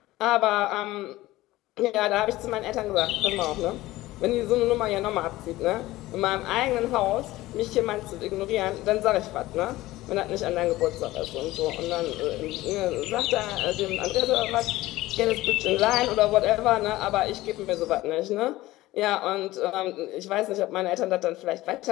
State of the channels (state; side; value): quieter; right; 17.4 dB